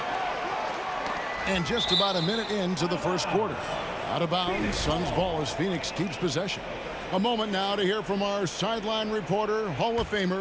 And just about a minute into the first quarter. Out of bounds, Suns ball as Phoenix keeps possession. A moment now to hear from our sideline reporter, Hall of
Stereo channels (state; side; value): identical; both; correlation 1.00